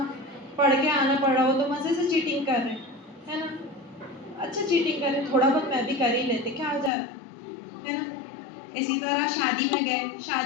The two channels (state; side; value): drops out; right; at 6.9 s